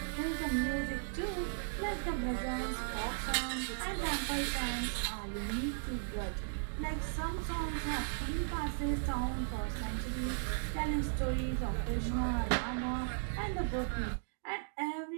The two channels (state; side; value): silent; left; digital silence